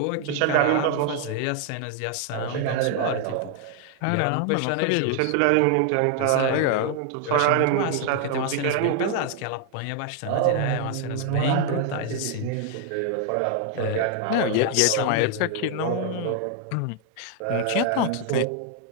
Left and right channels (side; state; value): both; different; correlation 0.00